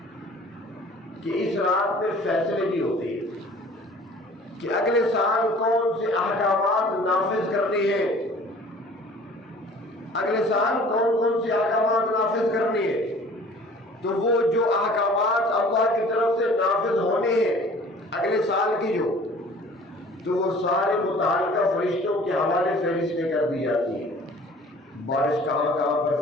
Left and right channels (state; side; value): normal; both; correlation 0.49